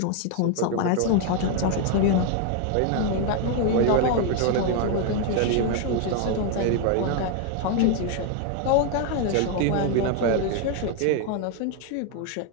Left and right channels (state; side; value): different; both; correlation 0.01